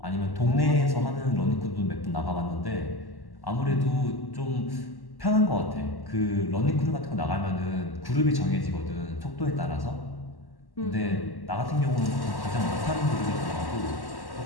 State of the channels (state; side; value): late; right; 1.1 ms